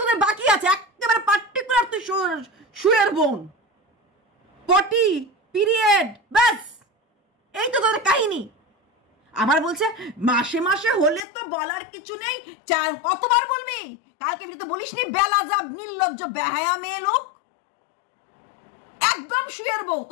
তোদের বাকি আছে? একেবারে পার্টিকুলার তুই শুয়ের বোন, পটি, পিরিয়ড, ব্যাস, এই তো তোদের কাহিনী। আবার বলছে মাসে মাসে হলে তো বলার কিছু নেই, কতবার বলবি? কালকে তো বলিস নি বেলাজাব নির্লজ্জ বেহায়া মেয়ে লোক, একদম শুয়ের বউ।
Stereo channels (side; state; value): right; drops out; at 11.2 s